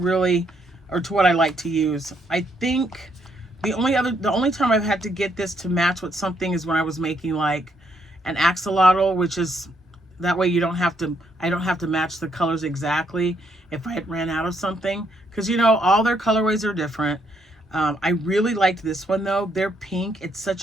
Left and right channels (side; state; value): both; normal; correlation 0.73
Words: or to what I like to use. I think the only time I've had to get this to match with something is when I was making like an axolotl, which is that way I don't have to match the colors exactly if I had ran out of something, because you know all their colorways are different. I really liked this one though. They're pink. It's